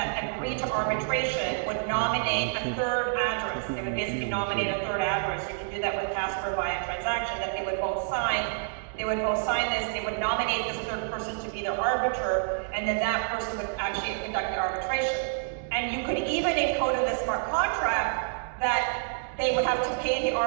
agreed to arbitration would nominate a third address. They would basically nominate a third address. You can do that with Casper via transaction, that they would both sign. They would both sign this, they would nominate this third person to be their arbiter, and then that person would actually conduct the arbitration. And you could even encode in the smart contract that they would have to pay the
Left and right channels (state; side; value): silent; left; digital silence